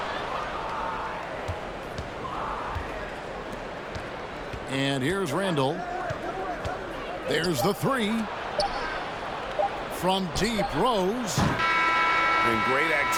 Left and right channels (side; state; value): both; identical; correlation 1.00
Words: And here's Randall. There's the 3. From deep, Rose. And great